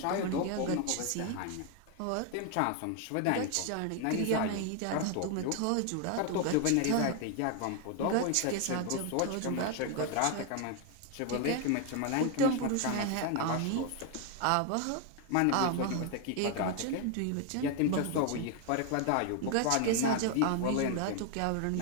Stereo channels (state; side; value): different; both; correlation 0.01